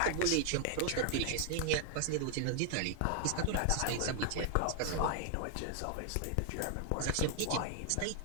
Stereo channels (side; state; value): both; different; correlation 0.00